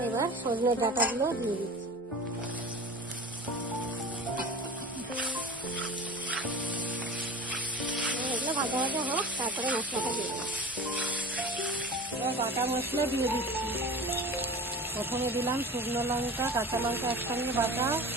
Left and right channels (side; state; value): both; normal; correlation 0.36